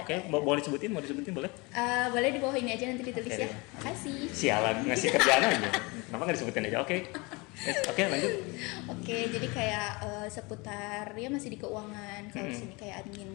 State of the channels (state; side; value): quieter; right; 26.7 dB